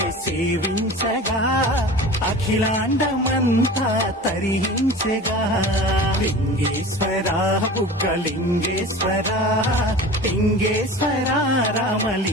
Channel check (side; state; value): both; normal; correlation 0.36